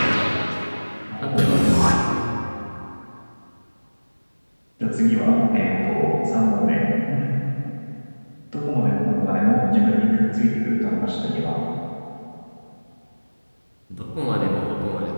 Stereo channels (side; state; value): both; inverted; correlation -1.00